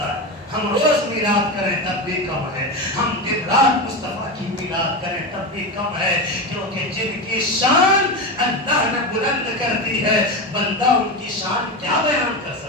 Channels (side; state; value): both; normal; correlation 0.19